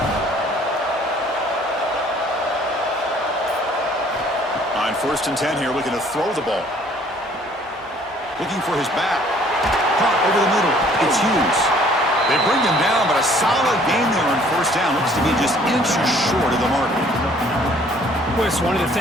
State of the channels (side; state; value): both; normal; correlation 0.58